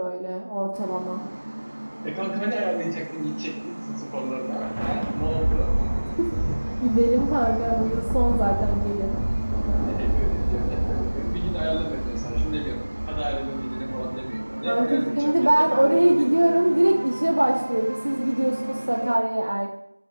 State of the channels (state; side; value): inverted; both; correlation -1.00